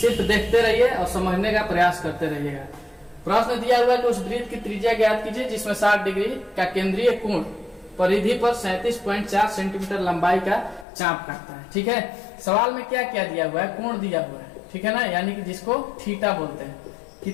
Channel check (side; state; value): right; drops out; at 10.9 s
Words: देखते रहिए और समझने का प्रयास करते रहिएगा। प्रश्न दिया हुआ है कि उस वृत्त की त्रिज्या ज्ञात कीजिए जिसमें 60 डिग्री का केंद्रीय कोण परिधि पर 37.4 सेंटीमीटर लंबाई का चाप काटता है, ठीक है। सवाल में क्या क्या दिया हुआ है, कोण दिया हुआ है, ठीक है ना, यानी कि जिसको थीटा बोलते हैं।